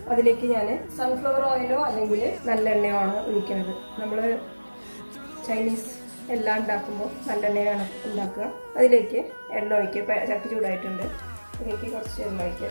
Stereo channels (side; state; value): both; inverted; correlation -1.00